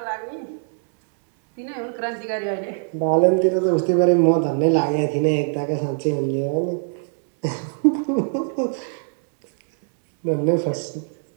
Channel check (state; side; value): silent; left; 64 dB below the other